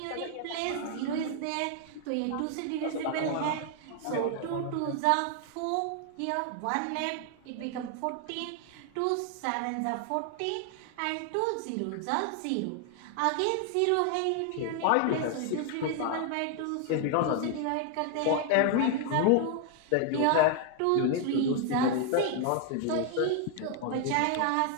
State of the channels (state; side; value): different; both; correlation 0.00